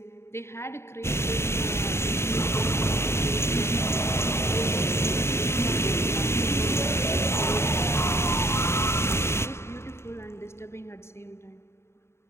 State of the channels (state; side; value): late; right; 0.13 ms